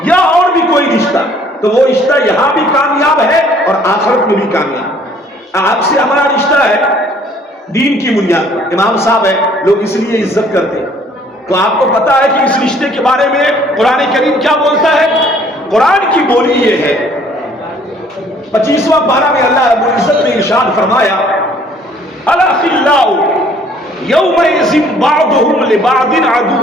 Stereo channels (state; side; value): normal; both; correlation 0.59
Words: یا اور بھی کوئی رشتہ، تو وہ رشتہ یہاں بھی کامیاب ہے اور آخرت میں بھی کامیاب. آپ سے ہمارا رشتہ ہے دین کی بنیاد پر، امام صاحب ہے، لوگ اس لیے عزت کرتے ہیں. تو آپ کو پتا ہے کہ اس رشتے کے بارے میں قرآن کریم کیا بولتا ہے؟ قرآن کی بولی یہ ہے، 25واں پارہ میں اللہ رب العزت نے ارشاد فرمایا الاخلاء یومئذ بعضهم لبعض